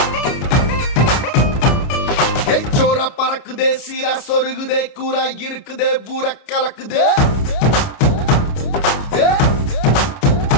பறக்குதே சீரா சொருகுதே கூரா இருக்குதே ஊர கலக்குதே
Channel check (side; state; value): right; late; 29 ms